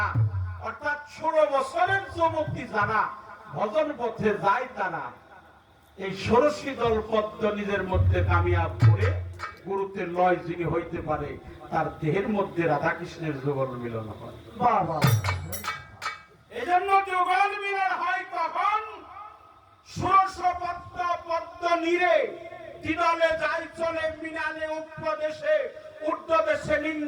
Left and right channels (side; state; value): both; identical; correlation 1.00